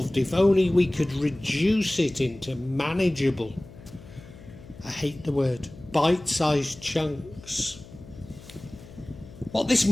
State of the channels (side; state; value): left; noise; hum, 19 dB below the sound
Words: if only we could reduce it into manageable, I hate the word, bite-sized chunks. What this